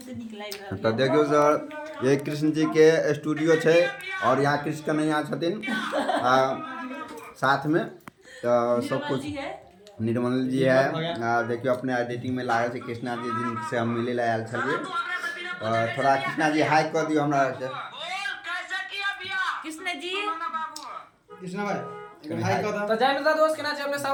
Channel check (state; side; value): identical; both; correlation 1.00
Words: निक लाग रहल तो देखियो सर ये कृष्ण जी के स्टूडियो छै और यहाँ कृष्ण कन्हैया छथिन साथ में तो सब कुछ है। निर्मल जी है। देखियो अपने एडिटिंग में लागल छै कृष्णा जी जिनसे हम मिले ला आयल छलिए। थोड़ा कृष्णा जी हाई कर दियो हमरा के। कृष्ण जी कृष्णा भाई हाय कदा तो जय मित्र दोस्त केना छै अपने सब